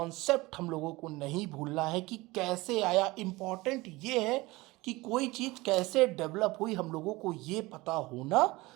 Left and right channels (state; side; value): quieter; left; 21.3 dB